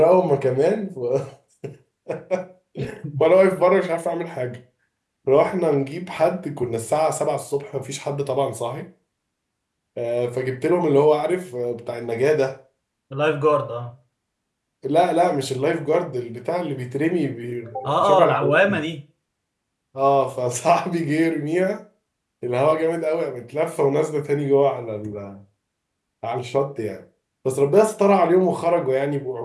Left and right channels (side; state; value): both; identical; correlation 1.00